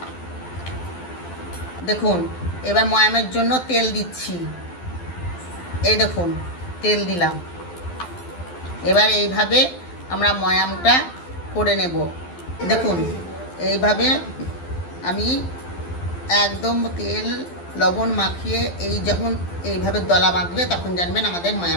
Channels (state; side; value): late; right; 12 ms